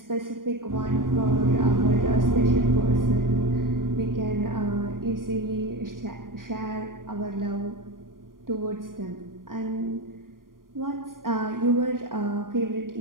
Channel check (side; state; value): left; late; 0.91 ms